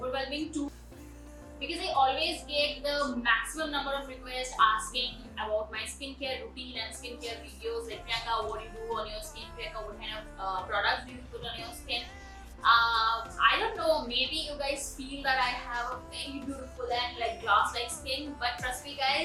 too because I always get the maximum number of requests asking about my skincare routine and skincare videos. Like, Priyanka, what do you do on your skin? Priyanka, what kind of products do you put on your skin? I don't know, maybe you guys feel that I have a very beautiful and like glass-like skin, but trust me,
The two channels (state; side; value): identical; both; correlation 1.00